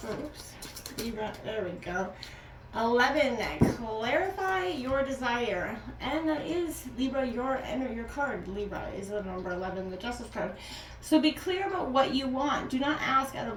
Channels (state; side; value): identical; both; correlation 1.00